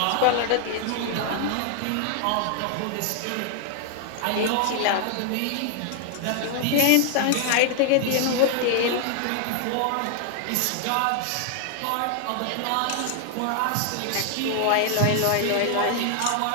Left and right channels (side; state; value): both; different; correlation 0.00